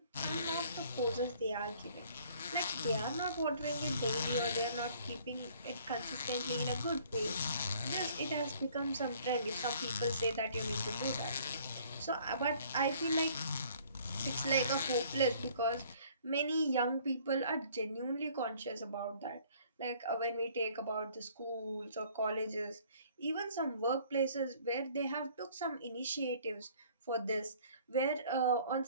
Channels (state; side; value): inverted; both; correlation -0.57